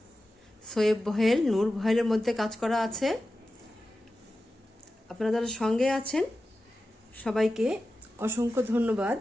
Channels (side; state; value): both; normal; correlation 0.93